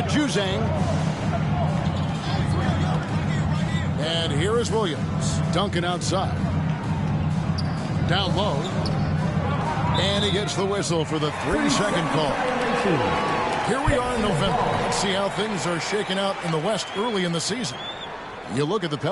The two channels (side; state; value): both; identical; correlation 1.00